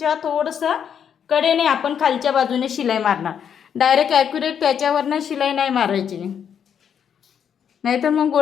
थोडंसं कडेने आपण खालच्या बाजूने शिलाई मारणार. डायरेक्ट ॲक्युरेट त्याच्यावरनं शिलाई नाही मारायची, नाहीतर मग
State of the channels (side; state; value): right; quieter; 8.1 dB